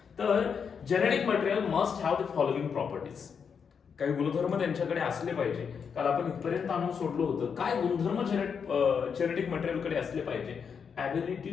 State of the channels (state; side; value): quieter; right; 6.5 dB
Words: तर genetic material must have the following properties. काही गुणधर्म त्यांच्याकडे असले पाहिजे. काल आपण इथपर्यंत आणून सोडलं होतं. काय गुणधर्म जेनेटिक मटेरियलकडे असले पाहिजे?